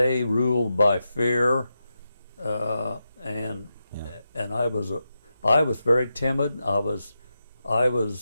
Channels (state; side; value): inverted; both; correlation -0.89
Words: ruled by fear, and I was very timid. I was